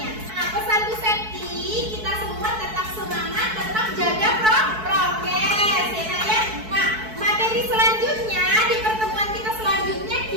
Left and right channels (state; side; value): late; left; 4.6 ms